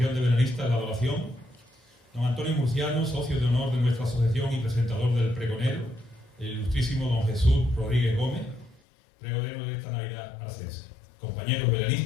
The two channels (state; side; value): drops out; right; at 8.8 s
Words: de Belenistas La Adoración, don Antonio Murciano, socio de honor de nuestra asociación y presentador del pregonero, el ilustrísimo don Jesús Rodríguez Gómez, pregonero de esta Navidad arcense. Compañeros